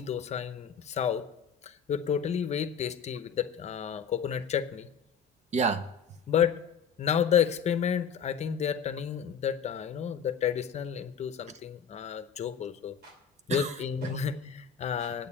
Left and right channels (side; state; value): right; quieter; 6.5 dB